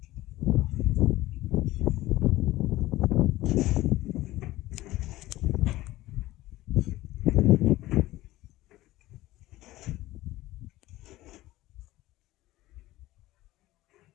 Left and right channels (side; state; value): right; quieter; 17.0 dB